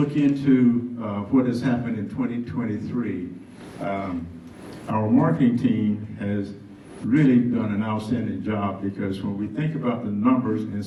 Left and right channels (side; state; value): both; identical; correlation 1.00